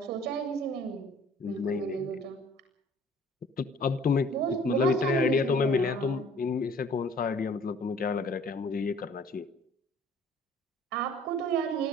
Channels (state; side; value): normal; both; correlation 0.53